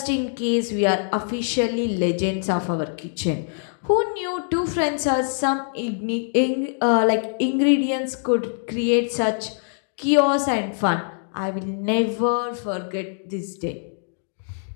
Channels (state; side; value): silent; right; digital silence